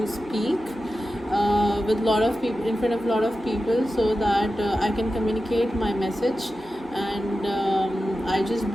speak with lot of people in front of a lot of people, so that I can communicate my message. And I just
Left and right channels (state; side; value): normal; both; correlation 0.93